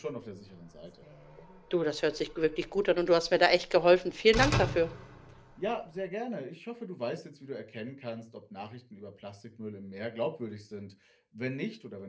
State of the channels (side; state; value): both; identical; correlation 1.00